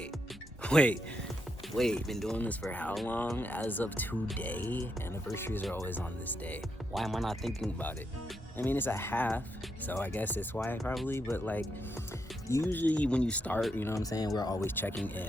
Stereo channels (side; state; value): both; normal; correlation 0.81